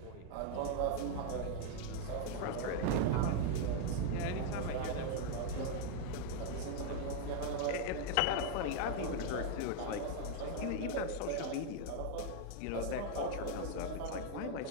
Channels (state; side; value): different; both; correlation 0.00